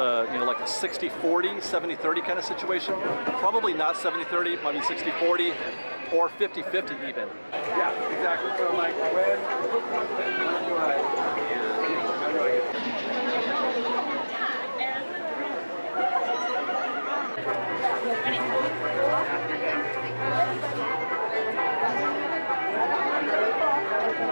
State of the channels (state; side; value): inverted; both; correlation -1.00